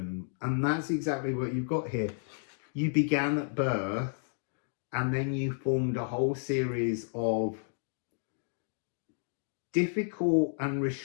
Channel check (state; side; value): silent; right; digital silence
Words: and that's exactly what you've got here. You began at birth, and then you formed a whole series of difficult and